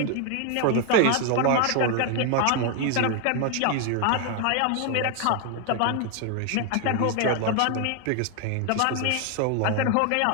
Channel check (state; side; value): different; both; correlation 0.01